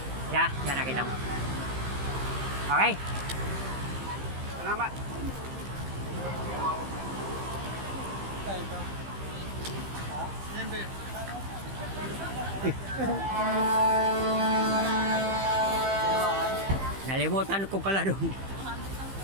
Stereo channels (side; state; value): left; late; 15 ms